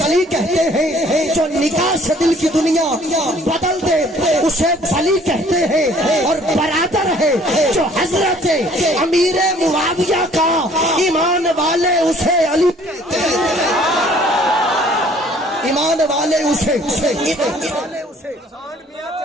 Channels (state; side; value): normal; both; correlation 0.56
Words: کہتے ہیں، جو نکاح سے دل کی دنیا بدل دے اسے بلی کہتے ہیں، اور برادر ہے جو حضرت امیر معاویہ کا ایمان والے اسے علی کہتے ہیں، ایمان والے اسے